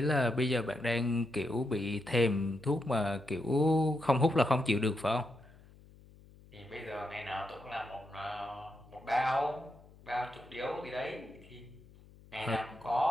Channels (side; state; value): left; noise; hum, 23 dB below the sound